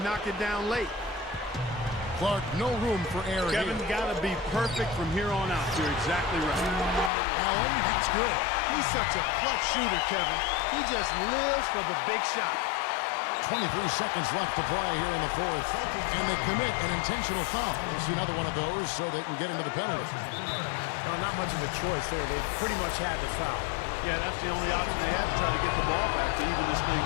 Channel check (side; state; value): right; drops out; at 7.1 s